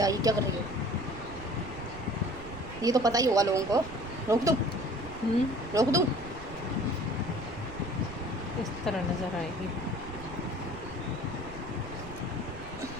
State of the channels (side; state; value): right; noise; rumble, 13 dB below the sound